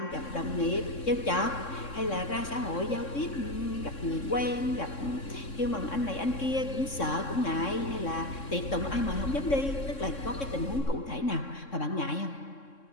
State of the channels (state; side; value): late; right; 3.6 ms